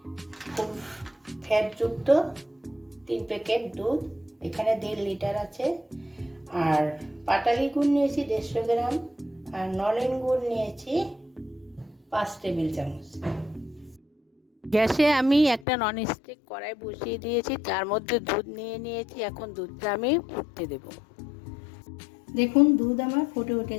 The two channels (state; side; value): drops out; right; at 15.7 s